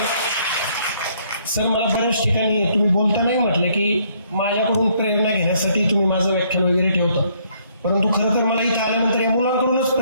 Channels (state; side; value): inverted; both; correlation -0.66